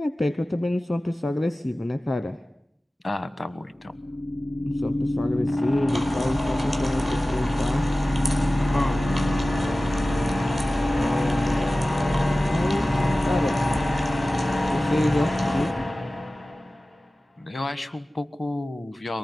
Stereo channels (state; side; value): normal; both; correlation 0.97